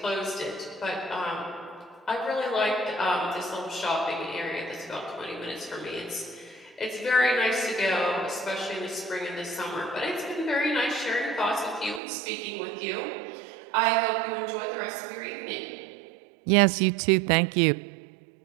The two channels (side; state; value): left; drops out; at 12.0 s